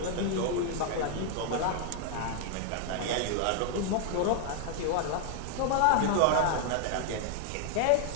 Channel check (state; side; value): different; both; correlation 0.00